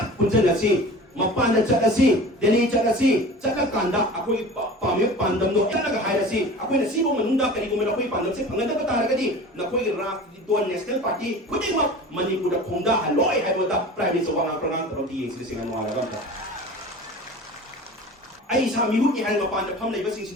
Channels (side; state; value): both; normal; correlation 0.38